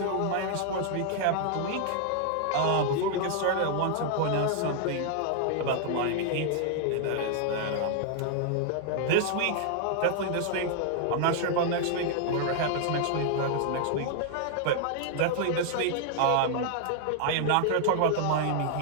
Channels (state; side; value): different; both; correlation 0.00